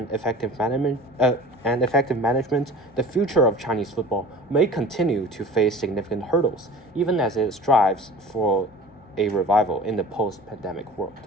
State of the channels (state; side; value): normal; both; correlation 0.41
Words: effective management, the future of Chinese football may continue to face significant hurdles, even as it strives for a revival in the post-pandemic world.